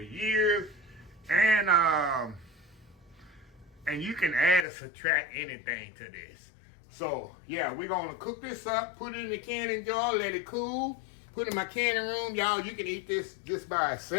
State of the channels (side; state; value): right; drops out; at 4.7 s